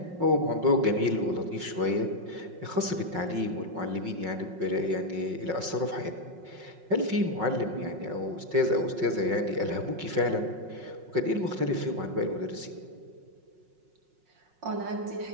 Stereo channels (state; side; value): late; left; 5.5 ms